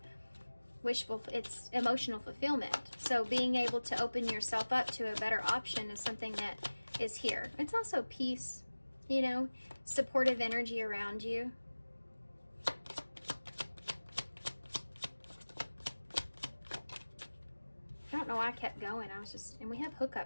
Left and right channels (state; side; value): inverted; both; correlation -1.00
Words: it's emotional fulfillment. So being able to open yourself up to a better option is something that is here. It's also peace, you know, supportive energy around you. I don't know why I kept going. And we have